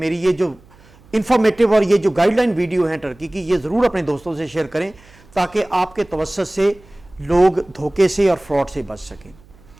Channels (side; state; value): right; noise; hum, 27 dB below the sound